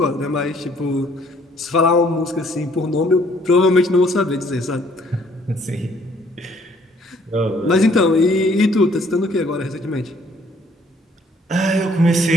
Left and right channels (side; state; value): both; normal; correlation 0.62